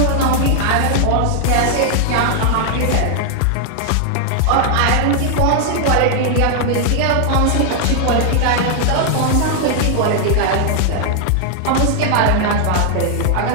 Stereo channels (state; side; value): different; both; correlation 0.00